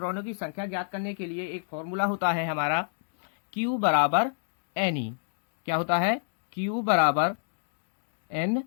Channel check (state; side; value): silent; right; digital silence